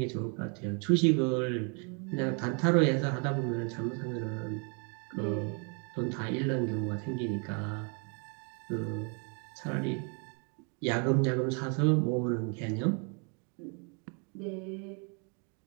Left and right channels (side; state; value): left; quieter; 37.5 dB